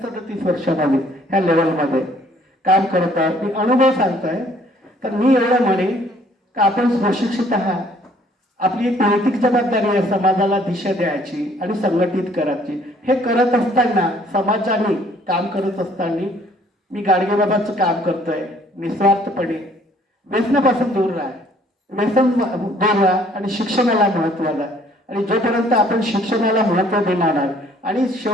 वर्षामध्ये ह्या लेवलमध्ये काम करत आहे. मी अनुभव सांगतोय. तर मी एवढं म्हणेन का आपण सुशिक्षित आहात, आपली एक नैतिक जबाबदारी आहे समाजाला दिशा द्यायची आणि संघटित करायची. हे करत असताना, समाजाने काम करत असताना मी गाडगेबाबांचं काम करतोय निस्वार्थपणे. व्यसनापासून दूर राहा, व्यसन दूर राहा आणि शिक्षणाला महत्त्व द्या. आणि जोपर्यंत आपण शिक्षणाला महत्त्व देणार आहात, आणि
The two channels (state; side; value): normal; both; correlation 0.60